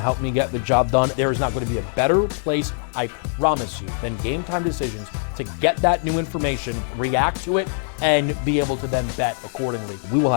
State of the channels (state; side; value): silent; right; digital silence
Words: help me get the job done. There is not going to be a better place, I promise you, than Game Time Decisions to get that new information, react to it, and be able to then bet accordingly. We will